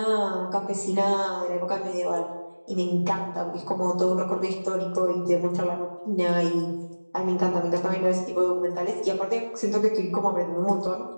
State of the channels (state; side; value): inverted; both; correlation -1.00